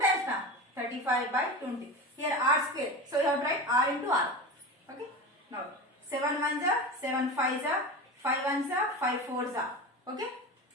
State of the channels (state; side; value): normal; both; correlation 0.27